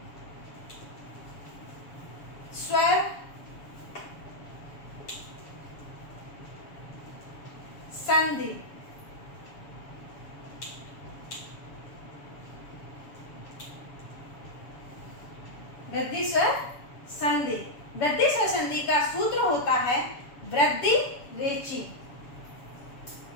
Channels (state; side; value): late; right; 7.1 ms